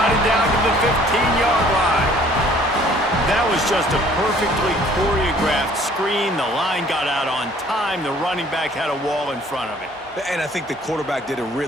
it down to the 15-yard line. That was just a perfectly choreographed screen. The line got out on time. The running back had a wall in front of it. And I think the quarterback did a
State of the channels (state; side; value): normal; both; correlation 0.56